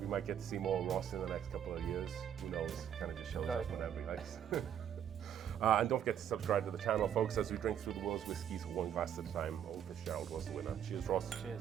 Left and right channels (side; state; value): left; quieter; 9.4 dB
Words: We might get to see more of Ross in the next couple of years. Who knows? Kind of just shows us whenever he likes. And don't forget to subscribe to the channel, folks, as we drink through the world's whiskies one glass at a time. Oh, Fitzgerald was the winner. Cheers, Ross.